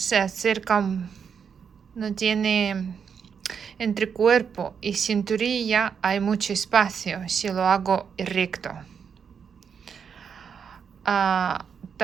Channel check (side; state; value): left; quieter; 6.8 dB